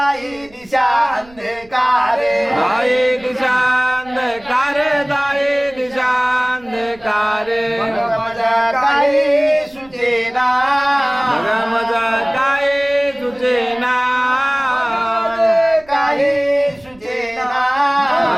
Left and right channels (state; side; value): noise; right; rumble, 26 dB below the sound